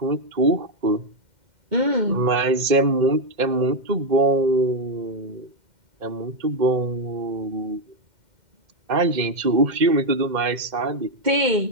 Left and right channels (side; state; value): left; late; 2.1 ms